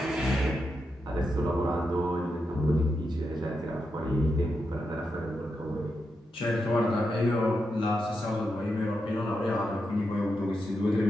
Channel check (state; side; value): normal; both; correlation 0.86